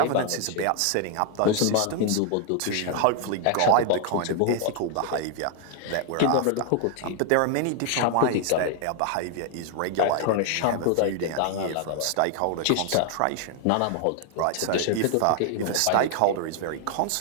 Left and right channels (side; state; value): both; different; correlation 0.00